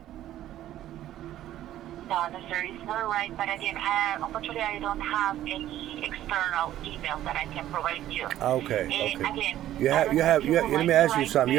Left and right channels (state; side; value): quieter; left; 12.9 dB